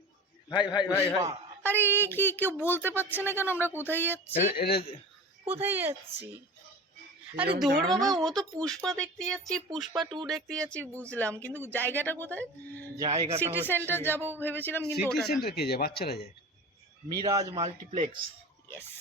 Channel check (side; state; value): both; normal; correlation 0.34